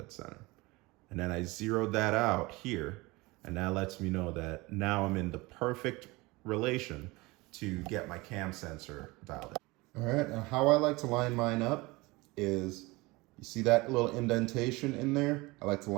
center. And then I zeroed that out here, and that lets me know that now I'm in the perfect relation to get my cam sensor dialed in. All right, now how I like to line mine up is, you see that little indentation in there? I like to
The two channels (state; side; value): quieter; left; 22.9 dB